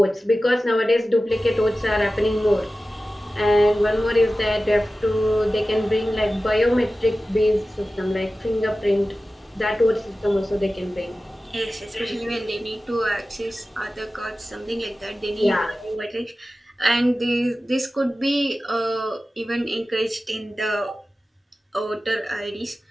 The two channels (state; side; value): normal; both; correlation 0.95